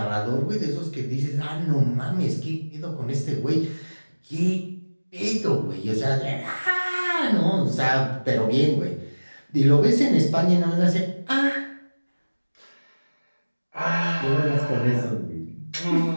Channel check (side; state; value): both; inverted; correlation -1.00